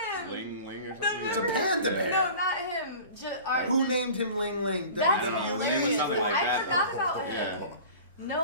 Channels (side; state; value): both; inverted; correlation -0.41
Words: him. Ling or something. It's a panda bear. No, not him. Who named him Ling Ling? That's It WWE? was something like I that, forgot though. about him. Yeah.